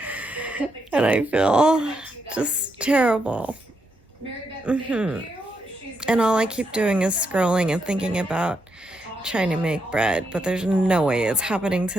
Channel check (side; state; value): both; normal; correlation 0.80